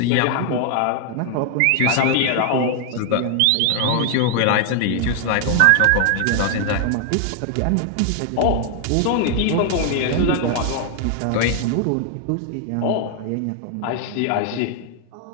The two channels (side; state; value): both; different; correlation 0.00